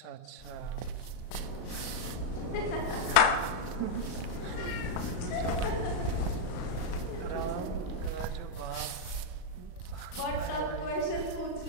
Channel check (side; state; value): right; late; 36 ms